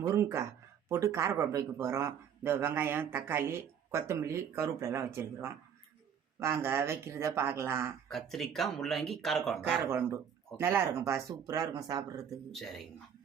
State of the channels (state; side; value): quieter; left; 8.1 dB